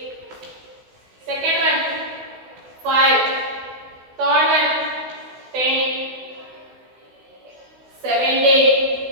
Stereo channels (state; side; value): late; left; 16 ms